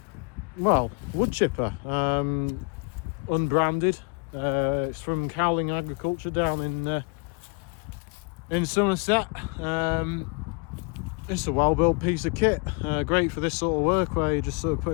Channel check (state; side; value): quieter; right; 33.5 dB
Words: wood chipper, unbranded. It's from Cowling Agriculture down in Somerset. It's a well-built piece of kit, great for this sort of work where you're just sort of